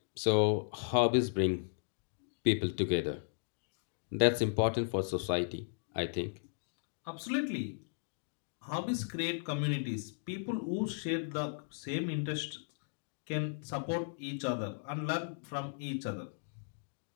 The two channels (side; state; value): right; silent; digital silence